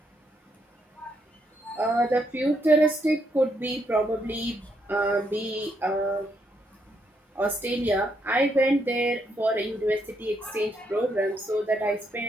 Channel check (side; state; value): both; normal; correlation 0.76